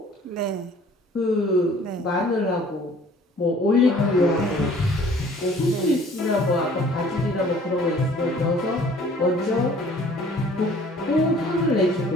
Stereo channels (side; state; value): both; normal; correlation 0.53